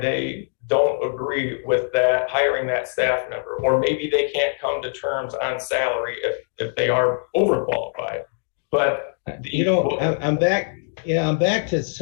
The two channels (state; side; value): silent; right; digital silence